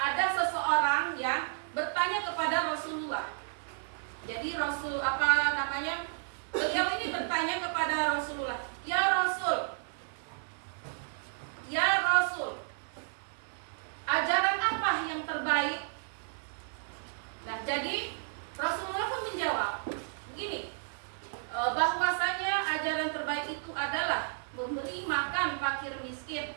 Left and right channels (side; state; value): left; silent; 56 dB below the other